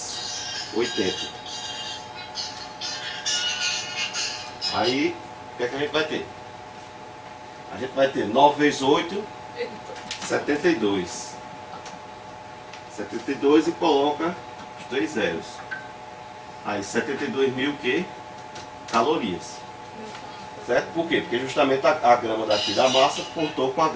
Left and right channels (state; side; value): identical; both; correlation 1.00